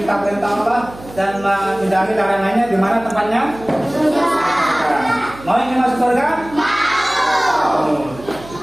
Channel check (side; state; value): right; noise; hum, 18 dB below the sound